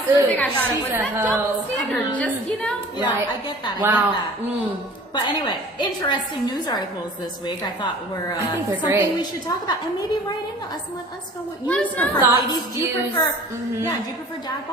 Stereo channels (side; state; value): both; normal; correlation 0.46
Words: the thing I thought She's of. Was a that double hoe. standard? Just, you know? Yeah, Right. I get that. Wow. I get that. But anyway, interesting news articles this week. I thought were think they're something great. we should talk about, and maybe write into us and let us know what you Let us know. prefer. Thoughts, Ladies, do you views. prefer? Yeah, do you prefer dad